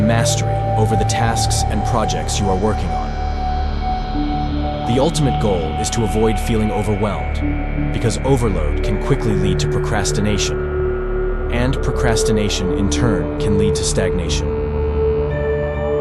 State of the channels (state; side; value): identical; both; correlation 1.00